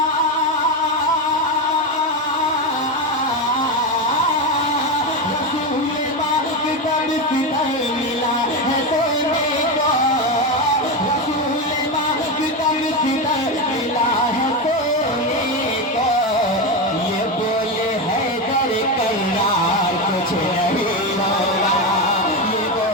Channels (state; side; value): normal; both; correlation 0.14